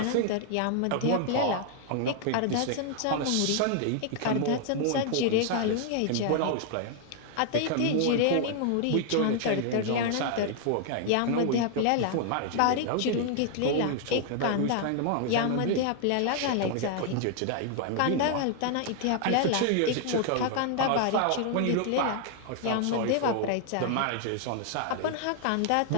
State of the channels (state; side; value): different; both; correlation 0.00